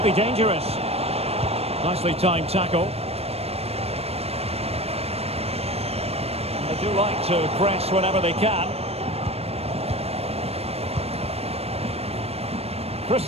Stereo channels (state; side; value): late; left; 0.29 ms